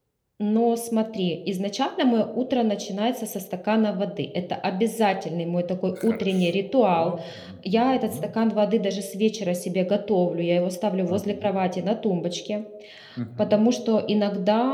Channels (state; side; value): identical; both; correlation 1.00